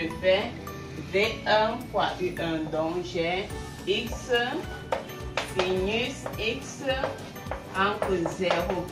fais v1 fois u1, donc j'ai x sinus x entre 0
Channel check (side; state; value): both; identical; correlation 1.00